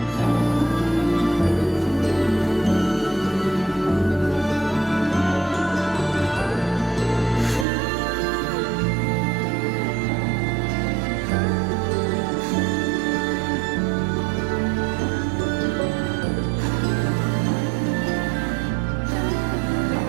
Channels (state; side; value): drops out; left; at 7.7 s